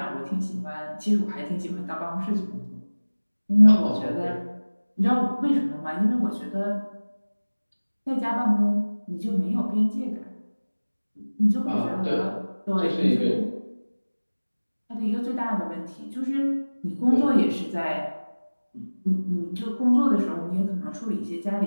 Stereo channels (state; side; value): inverted; both; correlation -1.00